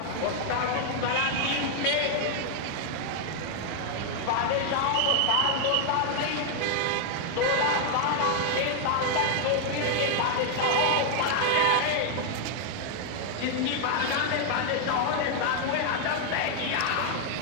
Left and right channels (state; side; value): different; both; correlation 0.00